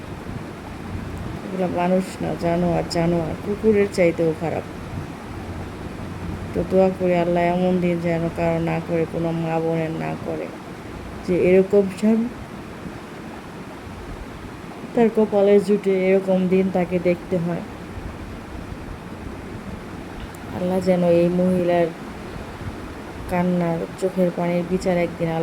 এগুলা মানুষ না জানোয়ার, জানোয়ার কুকুরের চাইতেও খারাপ। তো দোয়া করি আল্লাহ এমন দিন যেন কারো না করে, কোনো মা বোনের না করে, যে এরকম স্বামী তার কপালে জুটে এরকম দিন তাকে দেখতে হয়। আল্লাহ যেন এই মহিলার কান্নার চোখের পানির বিচার একদিন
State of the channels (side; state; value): both; identical; correlation 1.00